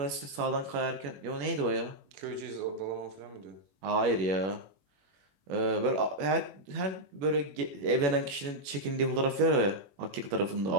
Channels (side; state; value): left; late; 21 ms